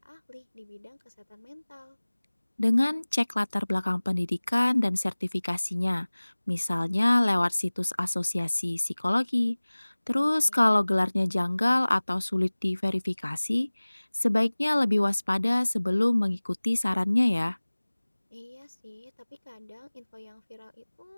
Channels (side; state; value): both; inverted; correlation -1.00